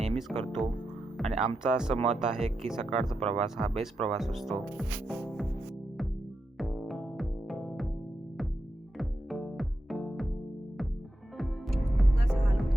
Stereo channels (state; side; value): normal; both; correlation 0.87